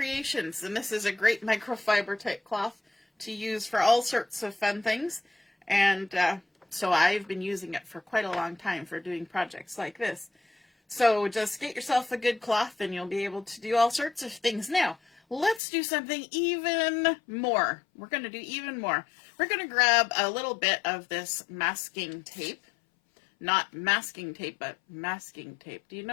And this is a great microfiber type cloth to use for all sorts of fun things. And so I've been using it for quite a long time for doing projects like this. So just get yourself a good cloth and you'll be able to do all sorts of things. Now, let's do something even more. We're going to do even more. We're going to grab a little bit of this masking tape. Not masking tape, but masking tape. Do you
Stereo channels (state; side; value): drops out; right; at 15.6 s